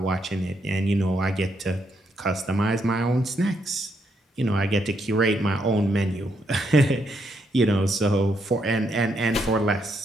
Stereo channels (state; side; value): normal; both; correlation 0.77